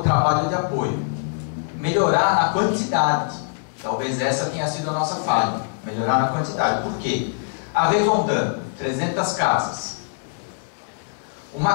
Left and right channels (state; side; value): silent; right; digital silence